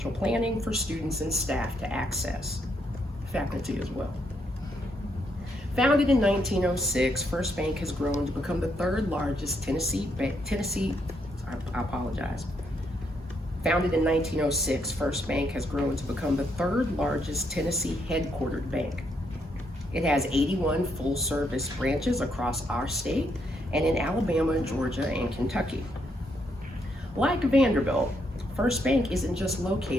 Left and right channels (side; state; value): both; normal; correlation 0.76